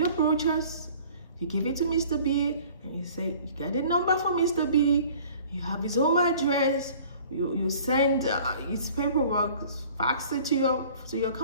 brochures, you give it to Mr. B, and you say, you get a number for Mr. B, you have his home address, you send his paperwork, fax it to your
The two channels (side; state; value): both; inverted; correlation -0.50